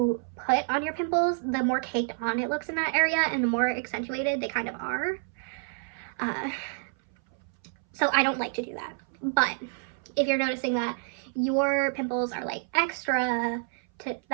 put on your pimples, the more caked on it looks in that area and the more accentuated they kind of are. So I don't like to do that. But if you're noticing that your pimples are like extra to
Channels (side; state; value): left; silent; 59 dB below the other